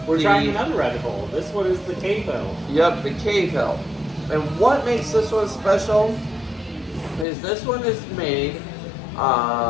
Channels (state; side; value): drops out; right; at 7.2 s